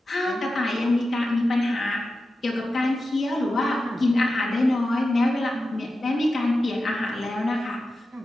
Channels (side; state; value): both; normal; correlation 0.92